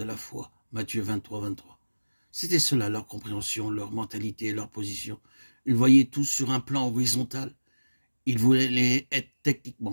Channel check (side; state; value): both; inverted; correlation -1.00